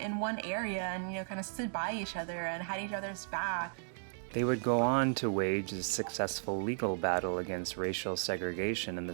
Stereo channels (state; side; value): silent; left; digital silence